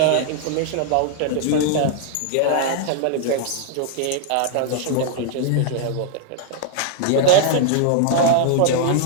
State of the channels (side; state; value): both; different; correlation 0.00